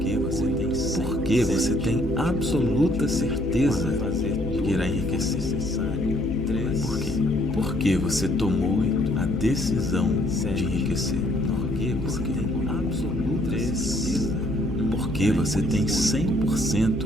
Porque você tem absoluta certeza de que irá enriquecer. Por quê? Porque você tomou a decisão de enriquecer. Porque você tem absoluta certeza. Porque você tem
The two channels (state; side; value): noise; left; hum, 10 dB below the sound